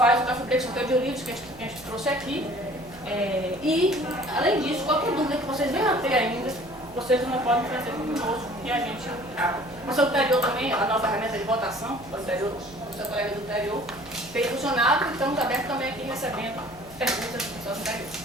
o café preto de livros que a gente trouxe aqui. E, além disso, qualquer dúvida que vocês venham a ter ainda, vocês não podem trazer conosco e a gente abre. Mas o anterior também, a nova ferramenta de votação, o seu colega do anterior, tem funcionado e estamos abertos também aqui recebendo perguntas dos pessoas anteriores.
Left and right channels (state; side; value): noise; right; hum, 23 dB below the sound